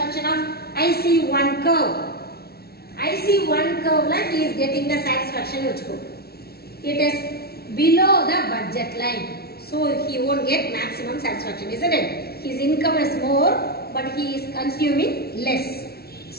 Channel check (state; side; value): late; right; 0.45 ms